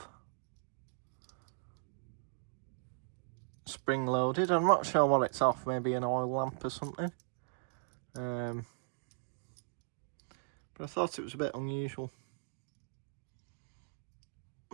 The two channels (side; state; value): left; silent; digital silence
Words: Spring loaded. I'm not sure what it's off, maybe an oil lamp or something. But I thought it was a bit unusual.